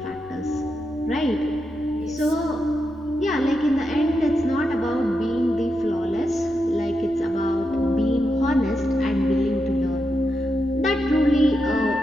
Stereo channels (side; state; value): left; noise; rumble, 24 dB below the sound